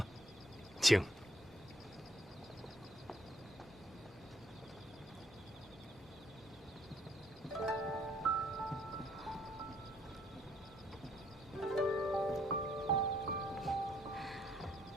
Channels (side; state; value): both; normal; correlation 0.67